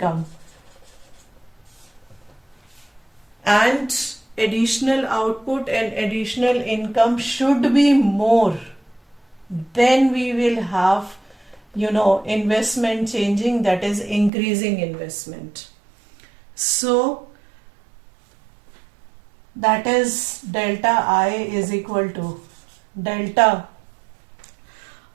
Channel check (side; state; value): left; drops out; at 14.3 s